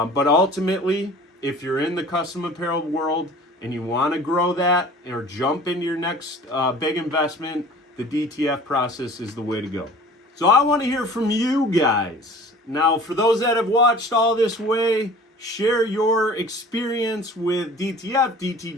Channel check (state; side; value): normal; both; correlation 0.45